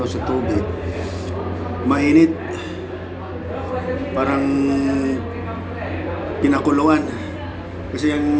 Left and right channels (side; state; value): both; identical; correlation 1.00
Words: sa tubig? Mainit. Parang pinakuluan. Kasi